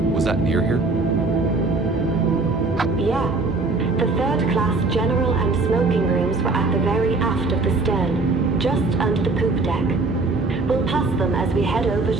Was that near here? Yeah. The third-class general and smoking rooms were at the very aft of the stern, just under the poop deck. We'll pass them as we head over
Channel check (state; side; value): quieter; left; 3.5 dB